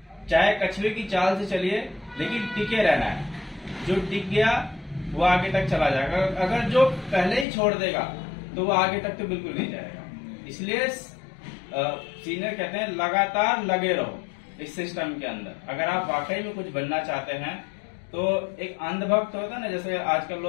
चाहे कछुए की चाल से चलिए, लेकिन टिके रहना है। जो टिक गया वो आगे तक चला जाएगा, अगर जो पहले ही छोड़ देगा तो वो आगे तक तो बिल्कुल नहीं जाएगा। इसलिए सीनियर कहते हैं लगातार लगे रहो इस सिस्टम के अंदर। अगर आप वाकई में कुछ बनना चाहते हैं तो एक अंधभक्त होता है ना, जैसे आजकल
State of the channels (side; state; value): right; drops out; at 7.5 s